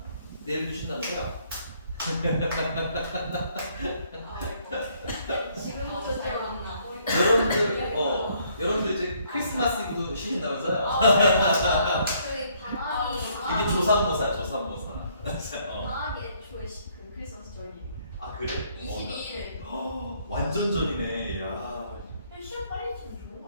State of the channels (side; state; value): both; inverted; correlation -0.67